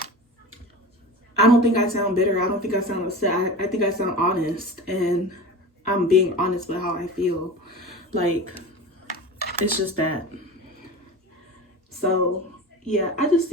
I don't think I sound bitter. I don't think I sound upset. I think I sound honest, and I'm being honest with how I feel. Like, it's just that. So yeah, I just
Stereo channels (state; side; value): normal; both; correlation 0.33